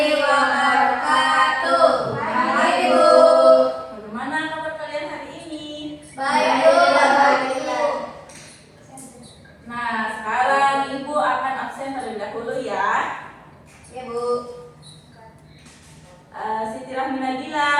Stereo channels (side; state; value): both; identical; correlation 1.00